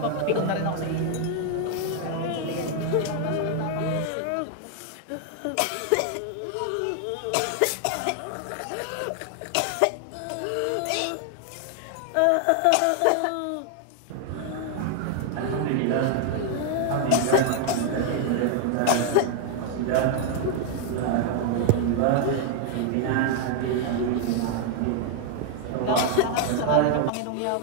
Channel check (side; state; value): both; different; correlation 0.00